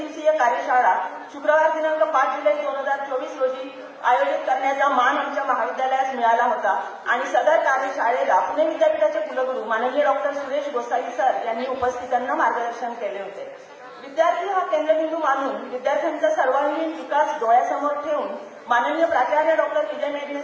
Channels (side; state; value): both; identical; correlation 1.00